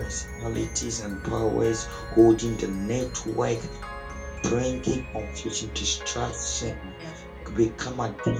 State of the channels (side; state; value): both; identical; correlation 1.00